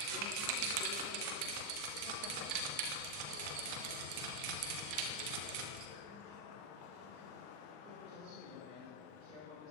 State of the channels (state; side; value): late; left; 40 ms